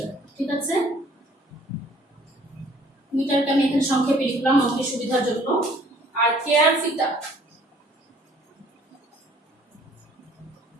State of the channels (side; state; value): both; normal; correlation 0.57